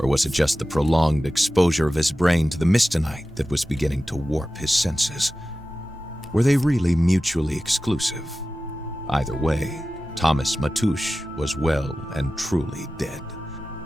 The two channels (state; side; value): normal; both; correlation 0.94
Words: was it just the prolonged exposure of his brain to the mistonite that was beginning to warp his senses? Were they really mutually exclusive? Either way, Thomas Matouche was well and truly dead.